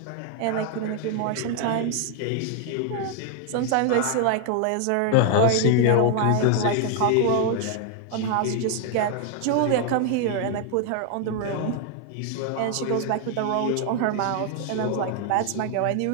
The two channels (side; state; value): both; different; correlation 0.00